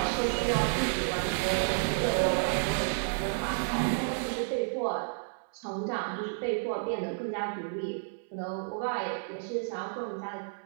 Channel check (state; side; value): silent; left; 57 dB below the other